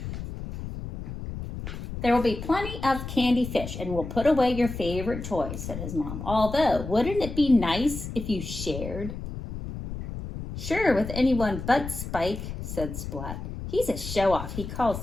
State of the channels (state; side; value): noise; left; rumble, 8 dB below the sound